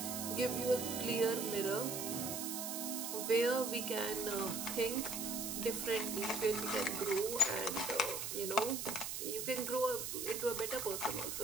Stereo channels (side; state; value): right; noise; hiss, 4 dB below the sound